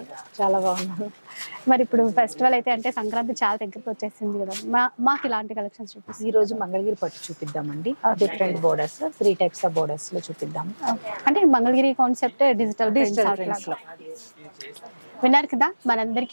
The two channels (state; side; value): inverted; both; correlation -1.00